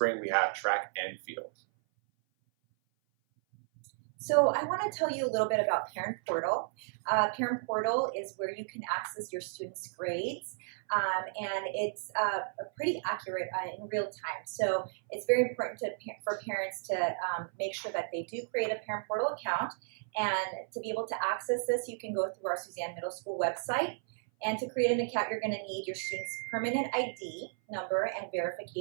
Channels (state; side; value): silent; left; 55 dB below the other